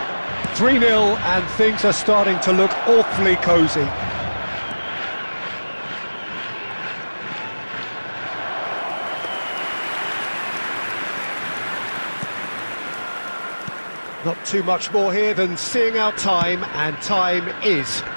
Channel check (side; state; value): both; inverted; correlation -1.00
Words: 3-0, and things are starting to look awfully cosy. Not too much more here than seeing out time, and time is